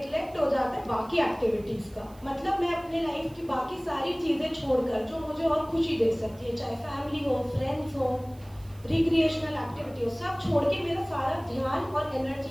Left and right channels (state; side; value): noise; right; hiss, 26 dB below the sound